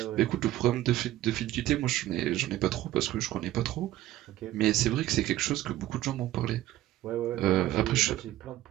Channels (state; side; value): quieter; left; 14.7 dB